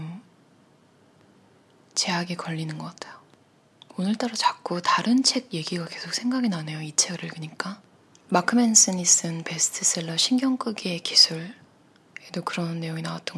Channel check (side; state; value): both; identical; correlation 1.00